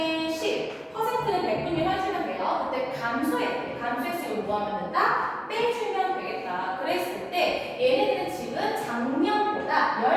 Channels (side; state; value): both; identical; correlation 1.00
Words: 10, 퍼센트는 100분의 1 해주면 돼요. 그때 감소했으면 뭐 하면 된다? 빼주면 되겠다. 그랬을 때 얘네들은 지금 작년보다